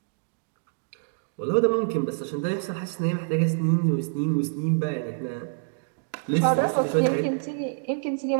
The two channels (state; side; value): silent; left; digital silence